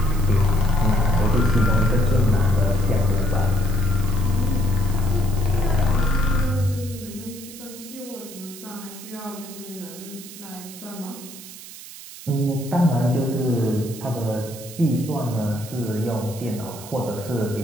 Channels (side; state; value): right; noise; hiss, 15 dB below the sound